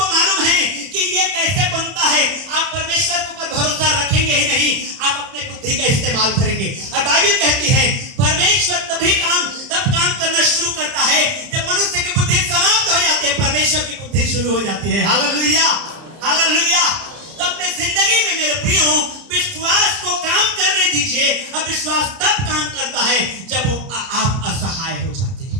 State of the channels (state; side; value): late; left; 30 ms